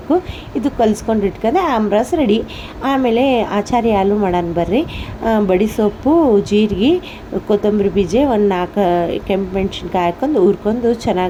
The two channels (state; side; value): identical; both; correlation 1.00